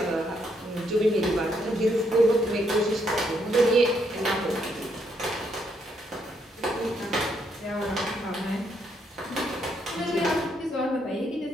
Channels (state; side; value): normal; both; correlation 0.74